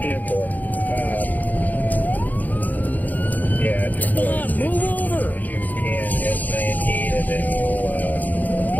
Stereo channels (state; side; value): late; right; 0.082 ms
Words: Come on, move over! You can S19 and then we'll